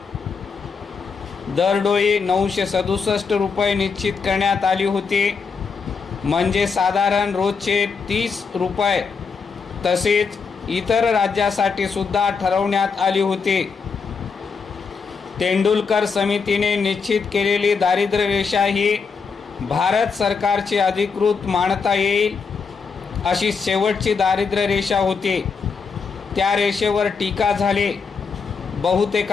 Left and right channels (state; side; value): quieter; right; 5.3 dB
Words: दरडोई 967 रुपये निश्चित करण्यात आली होती, म्हणजे साधारण रोजचे 30 रुपये. तसेच इतर राज्यासाठी सुद्धा ठरवण्यात आली होती. तेंडुलकर समितीने निश्चित केलेली दारिद्र्य रेषा ही भारत सरकारची अधिकृत मानता येईल अशी शेवटची दारिद्र्य रेषा होती. त्या रेषेवर टीका झाली.